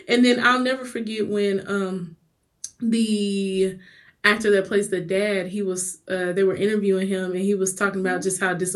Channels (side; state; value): both; identical; correlation 1.00